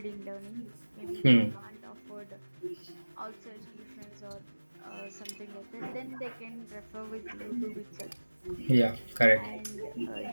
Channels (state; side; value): inverted; both; correlation -1.00